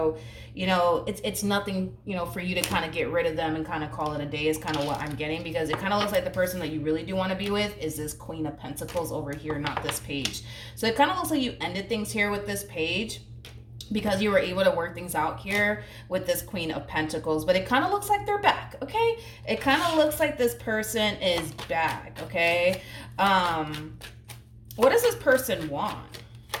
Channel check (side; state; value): both; identical; correlation 1.00